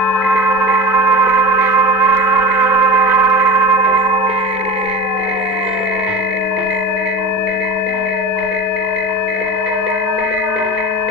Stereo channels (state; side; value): normal; both; correlation 0.30